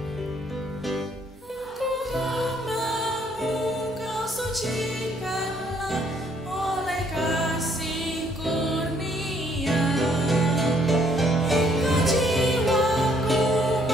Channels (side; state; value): both; normal; correlation 0.66